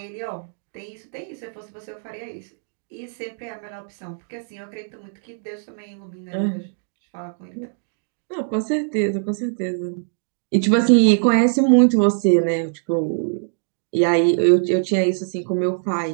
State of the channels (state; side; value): silent; left; digital silence